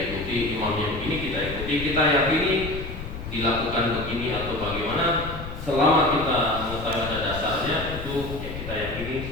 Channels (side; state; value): left; noise; rumble, 9 dB below the sound